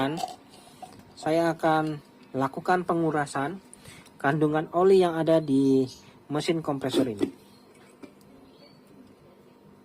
saya akan lakukan pengurasan kandungan oli yang ada di mesin kompresor ini.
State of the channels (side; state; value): both; identical; correlation 1.00